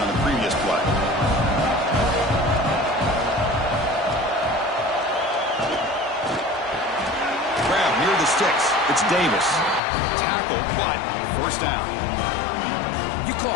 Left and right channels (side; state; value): right; drops out; at 9.8 s